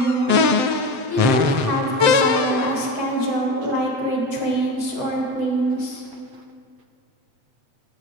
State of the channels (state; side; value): late; left; 7.7 ms